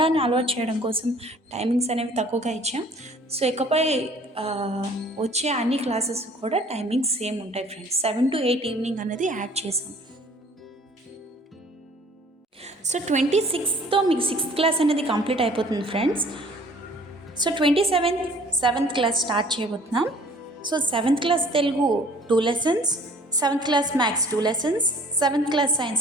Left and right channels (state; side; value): normal; both; correlation 0.53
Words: అలవాటు చేయడం కోసం టైమింగ్స్ అనేవి తక్కువగా ఇచ్చాం. సో ఇకపై వచ్చే అన్ని క్లాసెస్ కూడా టైమింగ్స్ సేమ్ ఉంటాయి ఫ్రెండ్స్. 7 to 8 ఈవినింగ్ అనేది యాడ్ చేసాం. సో 26తో మీకు 6th క్లాస్ అనేది కంప్లీట్ అయిపోతుంది friends. So 27th 7th class start చేయబోతున్నాం. So 7th class Telugu 2 lessons, 7th class maths 2 lessons, 7th class science